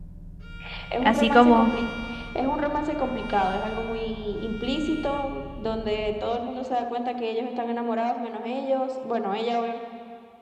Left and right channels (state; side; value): identical; both; correlation 1.00